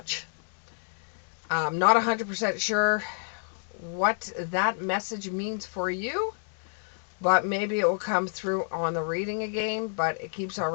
I'm not 100% sure what that message means for you, but maybe it will come through on the reading again, but it keeps on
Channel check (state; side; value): silent; right; digital silence